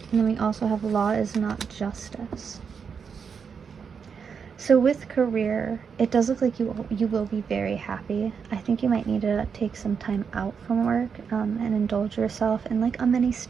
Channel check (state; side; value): quieter; left; 6.3 dB